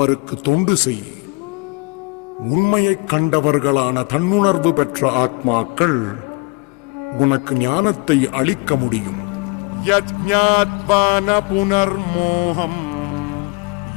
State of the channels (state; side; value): quieter; right; 29.2 dB